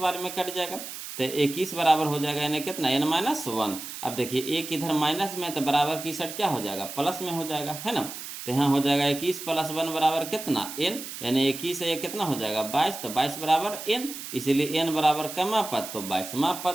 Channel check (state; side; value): noise; right; hiss, 10 dB below the sound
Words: बार में कट जाएगा, तो 21 बराबर हो जाएगा यानी कितना एन माइनस वन। अब देखिए एक इधर माइनस में, तो बराबर की साइड क्या हो जाएगा, प्लस में हो जाएगा, है ना। तो यहाँ हो जाएगा 21 + 1 बराबर कितना एन, यानी 21 से ये कितना हो जाएगा 22, तो 22 बराबर एन, इसीलिए एन बराबर कमा पद, तो 22वां